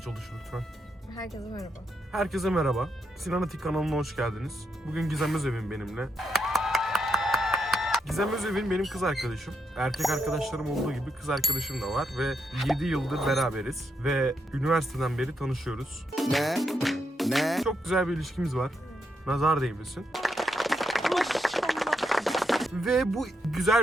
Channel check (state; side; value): normal; both; correlation 0.82